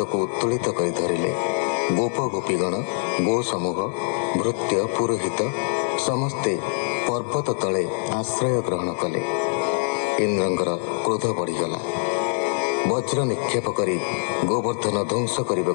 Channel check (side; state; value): right; silent; digital silence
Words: ଉତ୍ତୋଳିତ କରି ଧରିଲେ। ଗୋପ ଗୋପୀଗଣ, ଗୋ ସମୂହ, ଭୃତ୍ୟ, ପୁରୋହିତ ସମସ୍ତେ ପର୍ବତ ତଳେ ଆଶ୍ରୟ ଗ୍ରହଣ କଲେ। ଇନ୍ଦ୍ରଙ୍କର କ୍ରୋଧ ବଢ଼ିଗଲା। ବଜ୍ର ନିକ୍ଷେପ କରି ଗୋବର୍ଦ୍ଧନ ଧ୍ୱଂସ